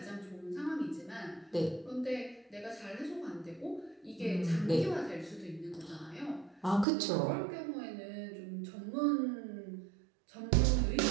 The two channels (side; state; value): left; drops out; at 6.9 s